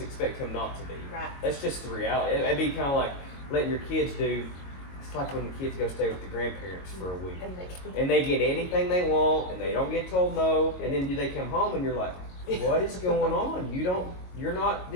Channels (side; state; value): right; late; 22 ms